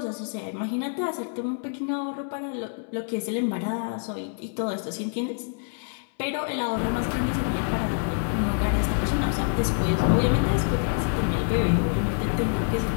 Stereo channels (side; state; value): right; silent; 61 dB below the other